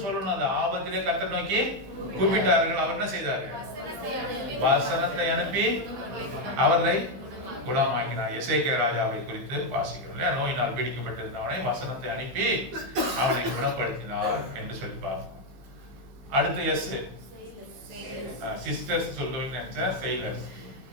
சொல்லணும். அந்த ஆபத்திலே கர்த்தரை நோக்கி கூப்பிட்டார்கள். அவர் என்ன செய்தாரு? வசனத்தை அனுப்பி அவர்களை குணமாக்கினார். எசேக்கியா ராஜாவை குறித்து வாசிக்கிறோம். நோயினால் பீடிக்கப்பட்டிருந்தவனை வசனத்தை அனுப்பி அவனை குணப்படுத்தினார் என்று சொல்லிப்பார். அடுத்து எஸ் சிஸ்டர்ஸ் சொல்லுவீங்க நினைச்சா செயிலர்ஸ்.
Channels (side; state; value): left; late; 15 ms